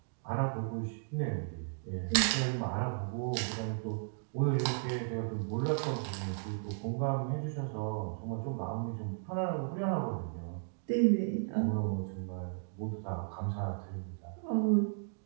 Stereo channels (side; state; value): left; silent; digital silence